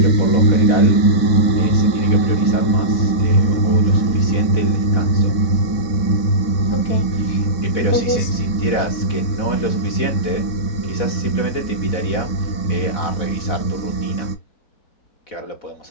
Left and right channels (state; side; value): late; right; 4.1 ms